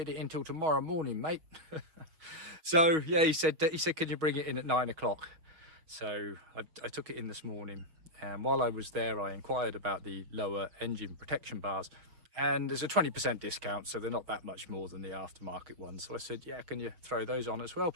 it in till tomorrow morning, mate. So yeah, he said, can you bring it in at 9 o'clock? So I took it in this morning. And while I was there, I inquired about the lower engine protection bars. And there's a 20% discount, so they're not that much more than the aftermarket ones. So I said, yeah, can you throw those on as well,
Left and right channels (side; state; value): left; late; 6.3 ms